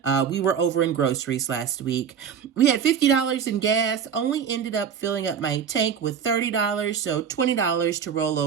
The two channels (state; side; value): quieter; left; 7.5 dB